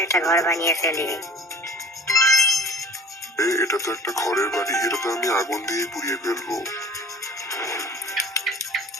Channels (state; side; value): normal; both; correlation 0.45